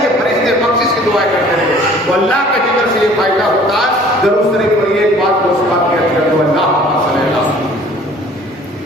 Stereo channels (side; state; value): both; normal; correlation 0.52